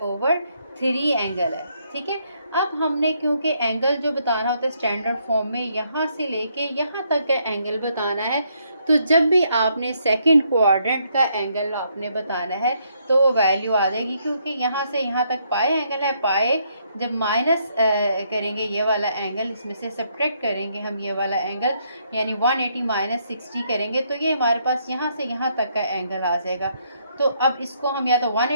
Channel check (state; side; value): inverted; both; correlation -0.73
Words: एंगल है, ठीक है। अब हमने क्योंकि एंगल जो बताना होता है स्टैंडर्ड फॉर्म में यहाँ से लेके यहाँ तक का एंगल बताना है, तो जब भी आपने सेकंड क्वाड्रेंट का एंगल आपने बताना है तो वो वैल्यू आ जाएगी, क्योंकि यहाँ से यहाँ तक पाई एंगल है। पाई जब माइनस करेंगे ये वाला एंगल, इसमें से सब्ट्रैक्ट करेंगे हम ये वाला एंगल, यानी 180 - 60 करेंगे तो ये हमारे पास यहाँ से यहाँ तक का एंगल आ जाएगा। तो अब इसको हम या तो